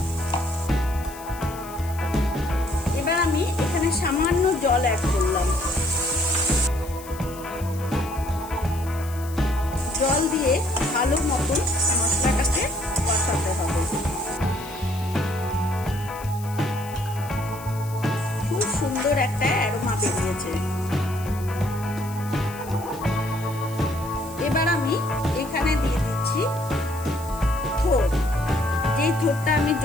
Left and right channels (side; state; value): left; noise; hiss, 17 dB below the sound